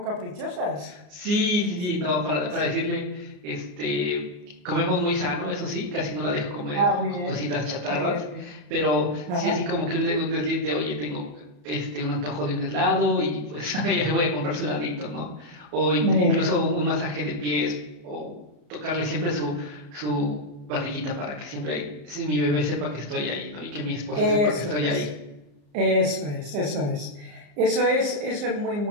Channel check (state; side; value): late; left; 34 ms